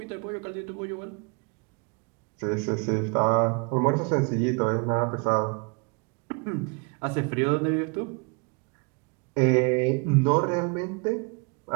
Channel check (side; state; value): left; quieter; 33.1 dB